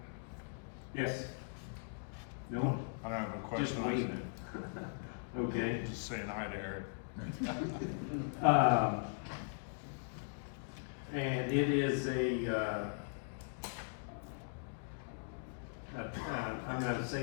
Yes? No? I don't have a Just question. me. Okay. I'm just saying hi to Eric. And it is I'm gonna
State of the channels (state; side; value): silent; right; digital silence